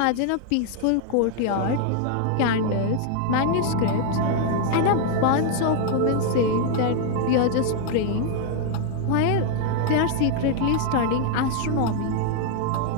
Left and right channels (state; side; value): different; both; correlation 0.00